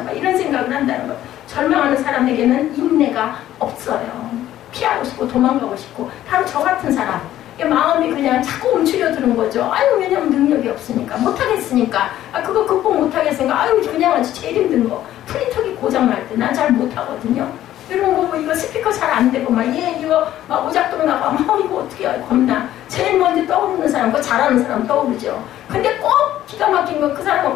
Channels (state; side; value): quieter; right; 12.9 dB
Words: 봐. 이런 생각을 한다는 거. 절망하는 사람에게는 인내가 없어요. 피하고 싶고 도망가고 싶고 바로 저 같은 사람. 마음이 그냥 자꾸 움츠려 드는 거죠. 왜냐면 능력이 없으니까 못하겠으니까 그거 극복 못하겠으니까 그냥 제일 힘든 거 프린터기 고장날 때 난 잘 못하거든요. 이런 거 이거 스피커 잘 안 되고 이거 오작동 나가 이거 어떻게 해 겁나. 제일 먼저 떠오르는 사람 그거 잘하는 사람 떠오르죠. 근데 꼭 기가 막힌 거 그